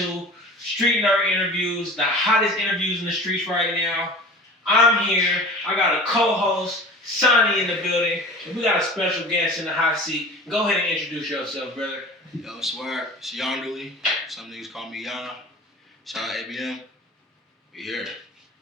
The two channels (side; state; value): both; normal; correlation 0.39